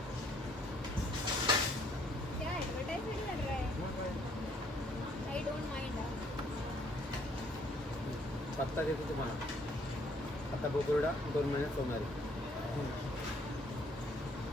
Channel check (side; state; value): both; normal; correlation 0.65